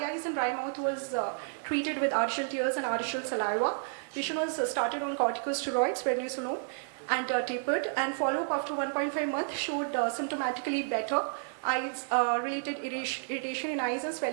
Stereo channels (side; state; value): left; silent; digital silence